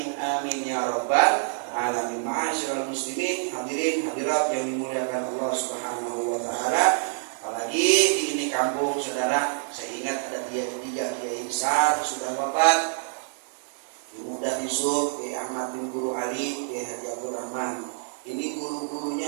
amin ya rabbal alamin. Ma'asyiral muslimin, hadirin hadirat yang dimuliakan Allah Subhanahu wa Ta'ala. Apalagi di ini kampung, saudara, saya ingat ada 3 kiai besar sudah wafat. Muda Yusuf, Kiai Ahmad bin Guru Ali, Kiai Haji Abdul Rahman. Ini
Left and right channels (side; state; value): left; silent; 60 dB below the other